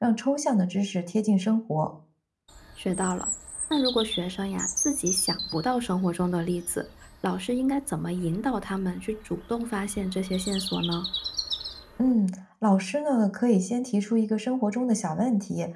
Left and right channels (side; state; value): both; identical; correlation 1.00